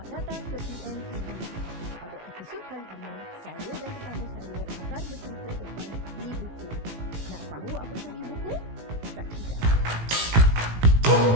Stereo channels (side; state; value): left; late; 18 ms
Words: datang ke PNTV. Pada episod kali ini, saya dan tetamu saya akan bercerita tentang e-buku. Nak tahu apa itu e-buku? Saksikan.